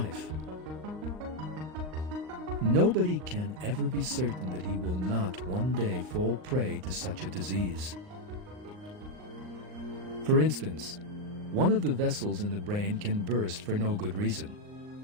Nobody can ever be certain that he will not one day fall prey to such a disease. For instance, one of the vessels in the brain can burst for no good reason.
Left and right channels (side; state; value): left; late; 39 ms